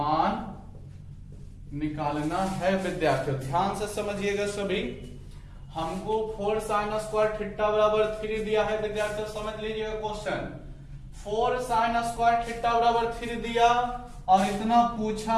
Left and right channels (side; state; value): both; identical; correlation 1.00